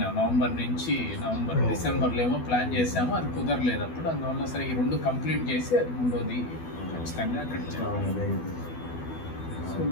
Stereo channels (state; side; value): late; right; 12 ms